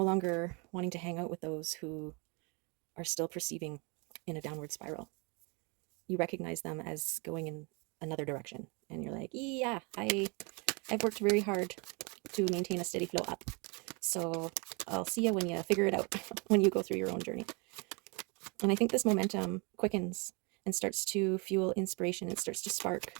longer wanting to hang out with those who are still perceiving in a downward spiral. You recognize them as going in another direction, and you're like, yeah, I've worked very hard to maintain a steady flow up, so I'll see you when you figure it out, when you go through your own journey. And I think this momentum quickens and starts to fuel inspiration. It starts to spark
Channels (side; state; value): left; quieter; 31.2 dB